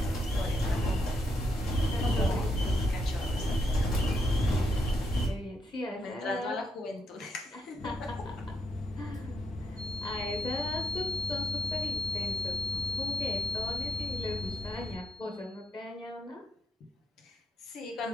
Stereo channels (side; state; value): both; normal; correlation 0.76